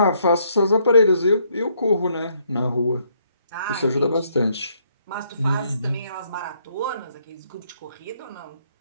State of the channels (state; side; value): inverted; both; correlation -0.71